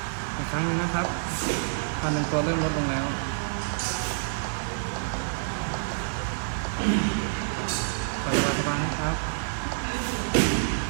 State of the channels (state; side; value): silent; left; 60 dB below the other